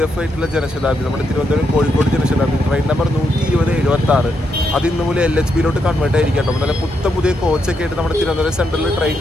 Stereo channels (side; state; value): both; normal; correlation 0.80